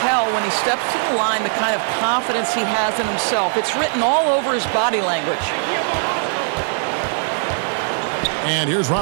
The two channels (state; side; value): silent; left; 58 dB below the other